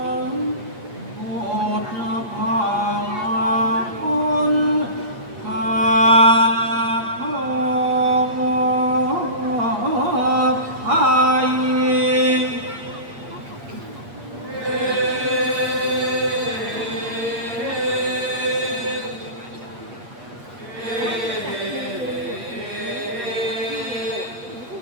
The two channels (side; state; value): left; late; 8.5 ms